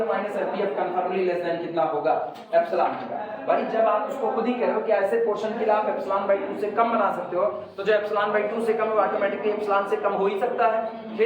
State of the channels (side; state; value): both; identical; correlation 1.00